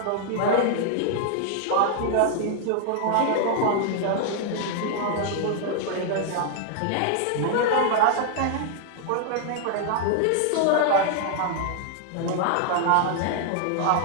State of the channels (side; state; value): both; different; correlation -0.01